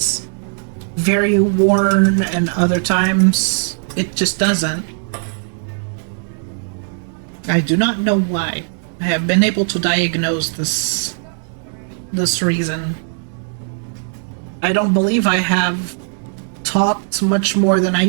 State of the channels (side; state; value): left; silent; 61 dB below the other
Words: very worn and other times it just doesn't. I do not know why. I have been able to diagnose this reason. I don't believe I have talked much more than I